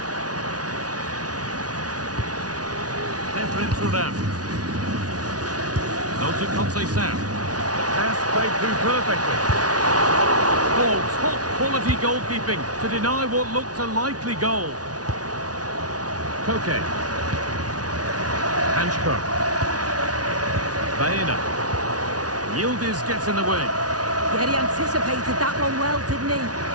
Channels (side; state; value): left; late; 0.68 ms